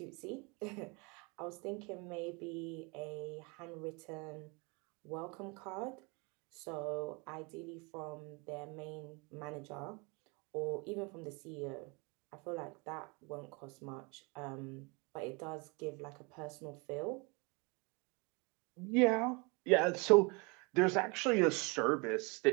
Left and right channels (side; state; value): left; quieter; 29.8 dB